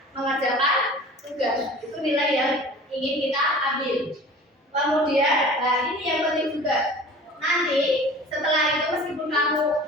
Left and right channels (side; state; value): both; normal; correlation 0.42